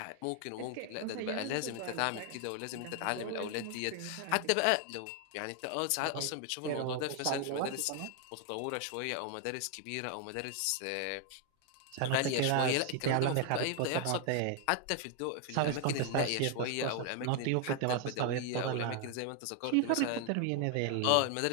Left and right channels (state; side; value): different; both; correlation 0.00